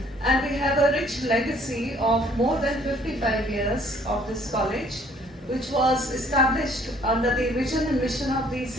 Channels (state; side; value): normal; both; correlation 0.60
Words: And we have a rich legacy of more than 55 years of this college, which was established under the vision and mission of the